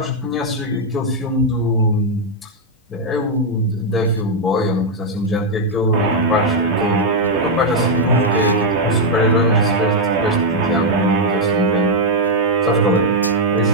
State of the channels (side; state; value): both; normal; correlation -0.01